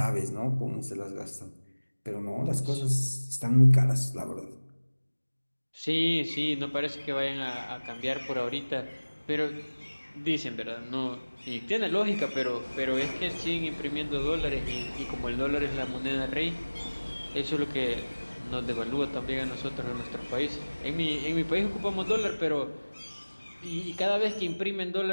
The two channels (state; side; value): inverted; both; correlation -1.00